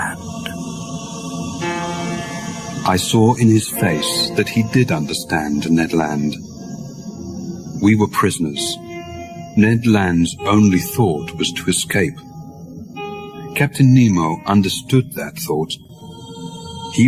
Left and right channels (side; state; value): both; identical; correlation 1.00